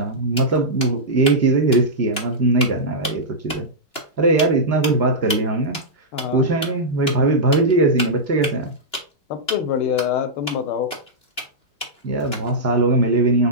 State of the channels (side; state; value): right; late; 2.9 ms